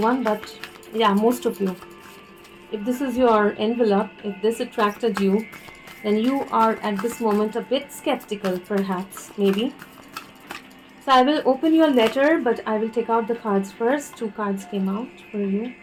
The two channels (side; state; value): both; identical; correlation 1.00